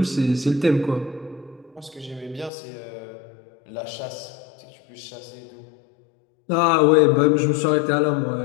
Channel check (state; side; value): drops out; right; at 2.5 s